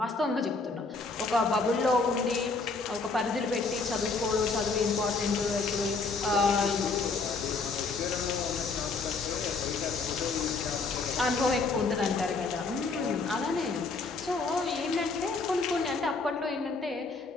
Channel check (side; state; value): right; quieter; 4.1 dB